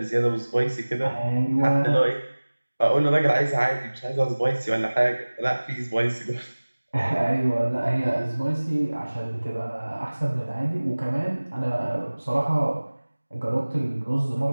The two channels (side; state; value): both; inverted; correlation -1.00